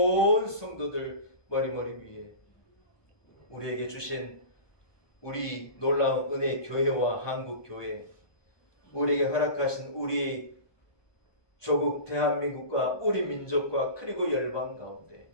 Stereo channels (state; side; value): late; right; 1.2 ms